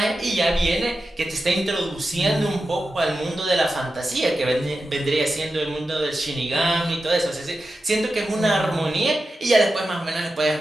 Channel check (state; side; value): normal; both; correlation 0.91